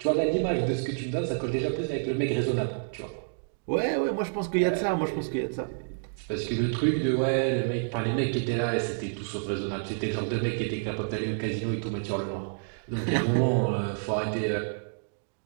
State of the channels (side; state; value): left; silent; digital silence